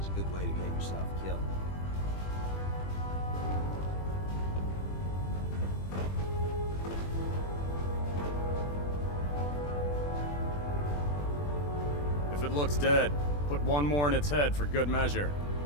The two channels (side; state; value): right; late; 21 ms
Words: a good way to get yourself killed. If it looks dead, put one more in its head for good measure.